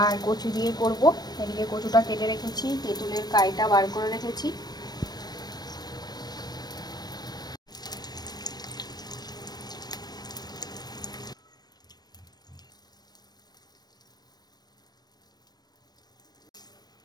কচু দিয়ে করব। এদিকে কচুটা কেটে রেখেছি, তেঁতুলের কাইটা বার করে রেখেছি।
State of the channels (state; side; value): late; right; 0.19 ms